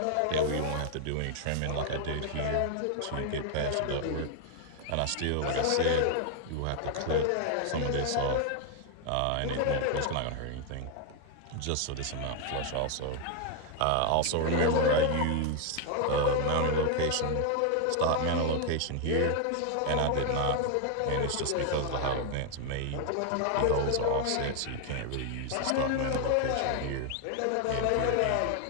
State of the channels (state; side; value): different; both; correlation 0.00